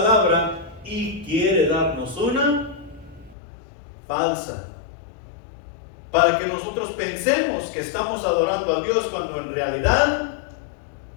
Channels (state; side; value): drops out; right; at 3.4 s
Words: y quiere darnos una falsa, para que nosotros pensemos que estamos adorando a Dios cuando en realidad